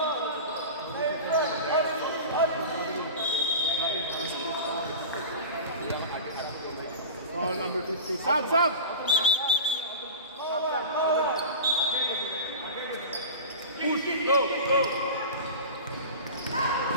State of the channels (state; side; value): inverted; both; correlation -0.32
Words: Foul number 50. Sub, sub. Push it, go, go.